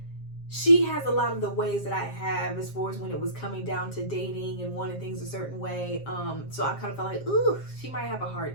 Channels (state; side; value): late; right; 7.5 ms